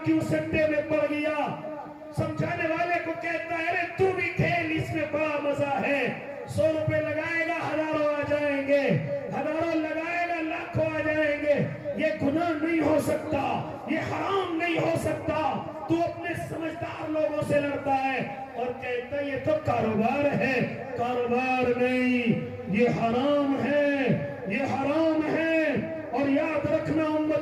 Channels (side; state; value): both; identical; correlation 1.00